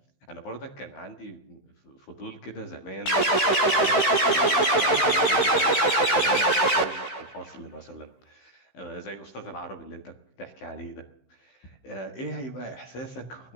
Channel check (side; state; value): right; late; 15 ms